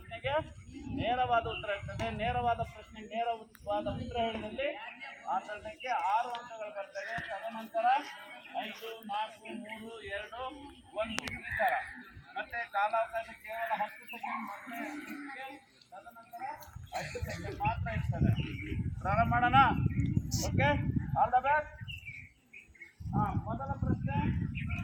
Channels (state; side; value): identical; both; correlation 1.00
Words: ನೇರವಾದ ಉತ್ತರ ಇರ್ತದೆ. ನೇರವಾದ ಪ್ರಶ್ನೆಗೆ ನೇರವಾದ ಉತ್ತರ ಹೇಳಿದಲ್ಲಿ ಆ ತಂಡಕ್ಕೆ 6 ಅಂಕಗಳು ಬರ್ತವೆ. ತದನಂತರ 5, 4, 3, 2, 1 ಈ ಥರ. ಮತ್ತೆ ಕಾಲಾವಕಾಶ ಕೇವಲ 10 ಸೆಕೆಂಡ್ ತದನಂತರ 10 ಸೆಕೆಂಡ್ ಮಾತ್ರ ಇರ್ತದೆ. ಪ್ರಾರಂಭ ಮಾಡೋಣ. Okay, all the best. ಮೊದಲ ಪ್ರಶ್ನೆ